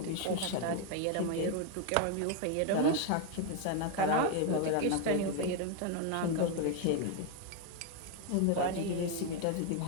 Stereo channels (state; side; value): different; both; correlation 0.01